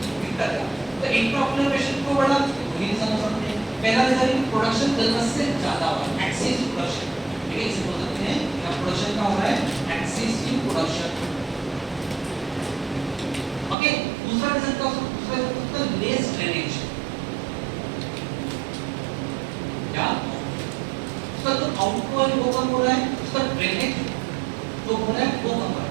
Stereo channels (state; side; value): drops out; left; at 13.8 s